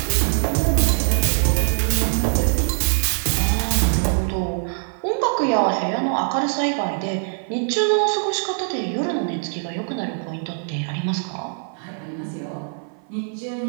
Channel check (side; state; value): left; silent; 56 dB below the other